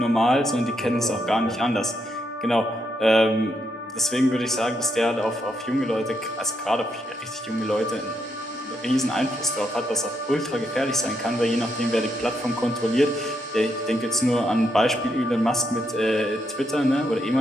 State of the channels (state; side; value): normal; both; correlation 0.79